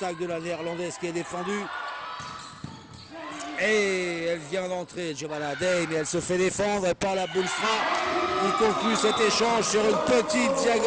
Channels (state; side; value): identical; both; correlation 1.00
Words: de la néerlandaise qui est défendue. Et elle vient d'entrer, Giovanna Day, mais elle se fait défendre. Et Paula Boomstra qui conclut cet échange sur une petite